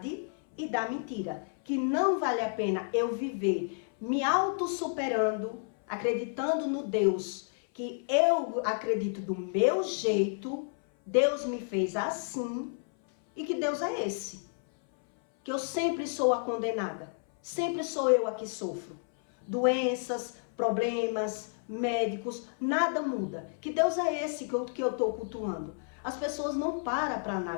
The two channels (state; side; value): silent; right; 57 dB below the other